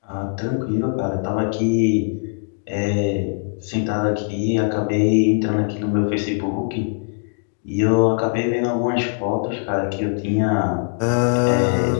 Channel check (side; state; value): right; silent; 65 dB below the other